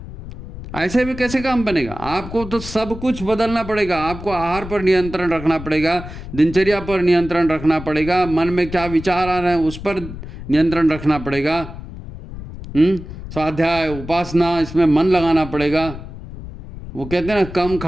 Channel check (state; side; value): noise; left; rumble, 12 dB below the sound